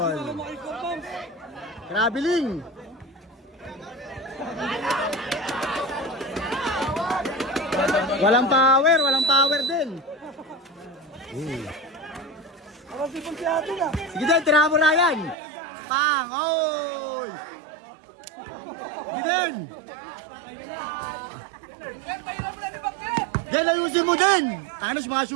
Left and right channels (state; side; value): drops out; left; at 15.4 s